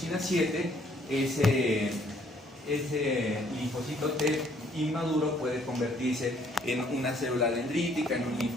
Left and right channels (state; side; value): normal; both; correlation 0.64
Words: 7, ese linfocito T inmaduro puede convertirse en una célula dendrítica, en un